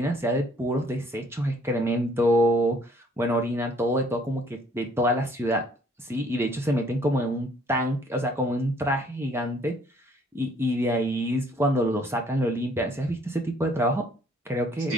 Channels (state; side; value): normal; both; correlation 0.61